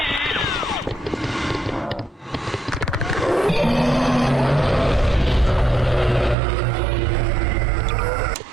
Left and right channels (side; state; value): left; drops out; at 6.4 s